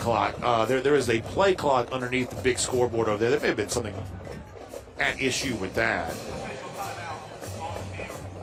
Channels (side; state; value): both; identical; correlation 1.00